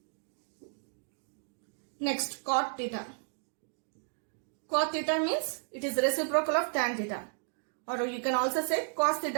Next, cot theta. Cot theta means it is reciprocal of tan theta. Or you can also say cos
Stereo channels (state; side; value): silent; left; digital silence